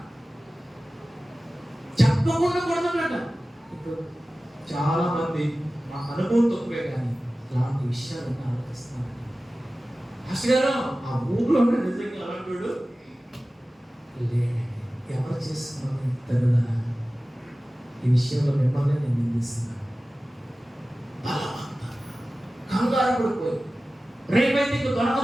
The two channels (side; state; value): both; normal; correlation 0.96